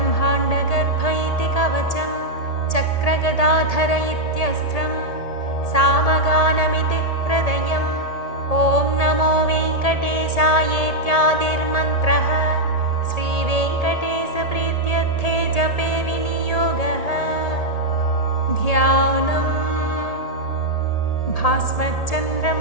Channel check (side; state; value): right; late; 1.8 ms